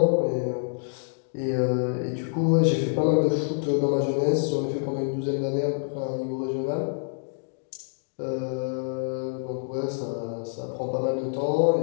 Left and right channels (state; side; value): silent; right; digital silence